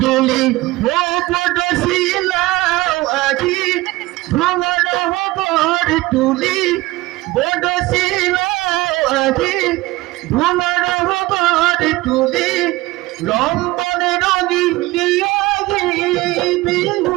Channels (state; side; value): quieter; left; 19.5 dB